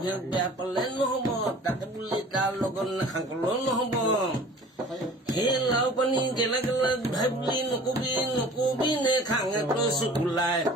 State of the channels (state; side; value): normal; both; correlation 0.46